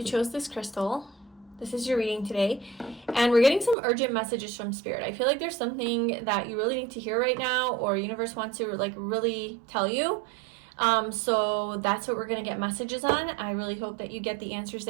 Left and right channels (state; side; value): drops out; left; at 3.8 s